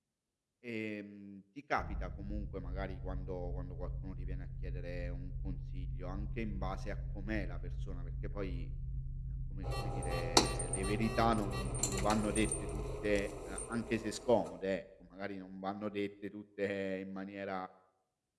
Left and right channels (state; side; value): identical; both; correlation 1.00